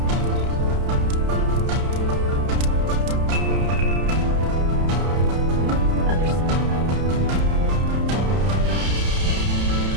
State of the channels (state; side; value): late; left; 31 ms